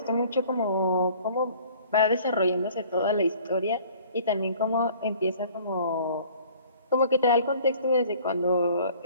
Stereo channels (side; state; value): both; inverted; correlation -0.52